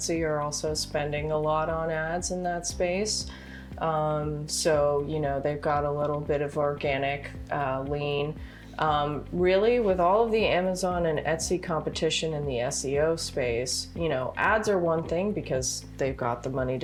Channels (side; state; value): both; identical; correlation 1.00